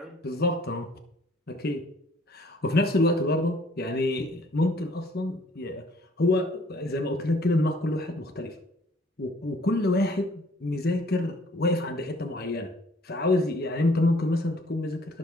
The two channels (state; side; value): normal; both; correlation 0.58